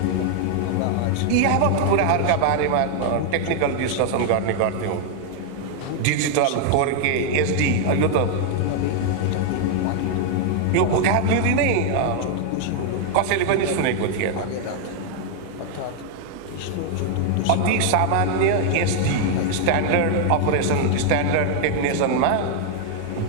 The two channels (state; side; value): different; both; correlation 0.00